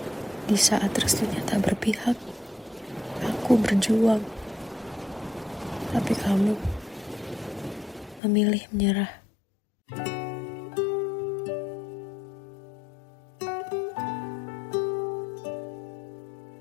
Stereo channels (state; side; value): drops out; right; at 8.2 s